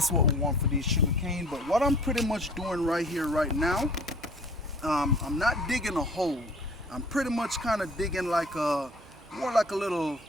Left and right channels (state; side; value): normal; both; correlation 0.50